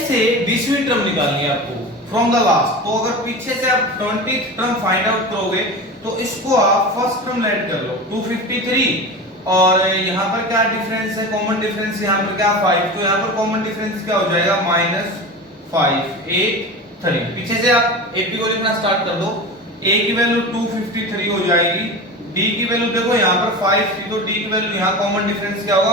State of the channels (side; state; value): both; normal; correlation 0.29